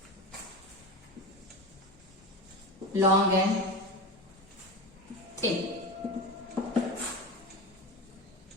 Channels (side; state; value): both; normal; correlation 0.25